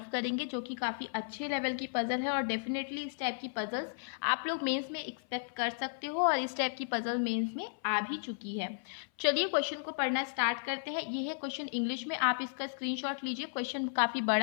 करेंगे जो कि काफ़ी अच्छे लेवल की पजल है और डेफिनेटली इस टाइप की पजल्स आप लोग मेंस में एक्सपेक्ट कर सकते हो और इस टाइप की पजल मेंस में आ भी चुकी है। चलिए क्वेश्चन को पढ़ना स्टार्ट करते हैं। ये है क्वेश्चन इंग्लिश में, आप इसका स्क्रीनशॉट लीजिए। क्वेश्चन काफ़ी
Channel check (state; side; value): silent; right; 55 dB below the other